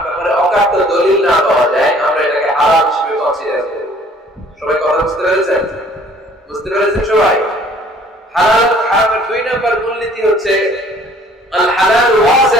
ব্যাপারে অকাট্য দলিল না পাওয়া যায়, আমরা এটাকে হালাল হিসেবে কনসিডার করি। সবাই কথা বুঝতে পেরেছেন? বুঝতে পেরেছেন সবাই? হালাল হারামের ২ নম্বর মূলনীতি হচ্ছে আল হালাল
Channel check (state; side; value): normal; both; correlation 0.56